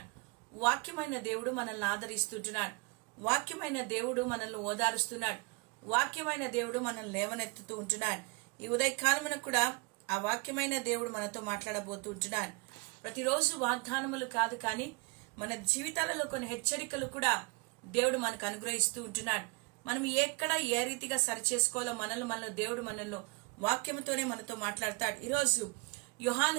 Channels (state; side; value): quieter; left; 29.0 dB